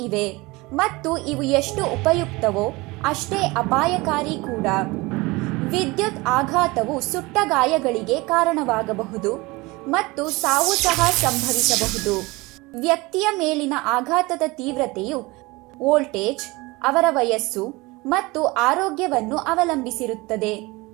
ಇವೆ ಮತ್ತು ಇವು ಎಷ್ಟು ಉಪಯುಕ್ತವೋ ಅಷ್ಟೇ ಅಪಾಯಕಾರಿ ಕೂಡ. ವಿದ್ಯುತ್ ಆಘಾತವು ಸುಟ್ಟ ಗಾಯಗಳಿಗೆ ಕಾರಣವಾಗಬಹುದು ಮತ್ತು ಸಾವು ಸಹ ಸಂಭವಿಸಬಹುದು. ವ್ಯಕ್ತಿಯ ಮೇಲಿನ ಆಘಾತದ ತೀವ್ರತೆಯು ವೋಲ್ಟೇಜ್, ಅವರ ವಯಸ್ಸು ಮತ್ತು ಆರೋಗ್ಯವನ್ನು ಅವಲಂಬಿಸಿರುತ್ತದೆ.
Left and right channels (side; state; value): left; quieter; 23.0 dB